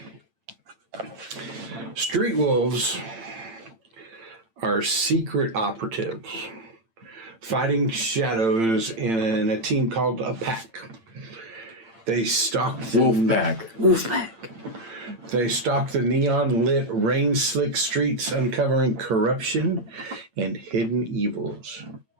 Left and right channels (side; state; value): left; late; 8.9 ms